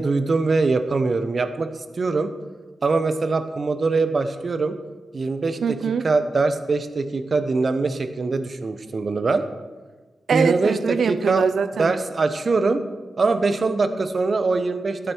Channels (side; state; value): left; quieter; 3.6 dB